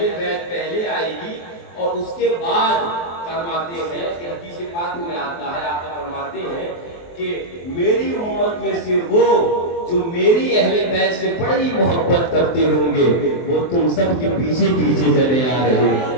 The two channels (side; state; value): right; late; 23 ms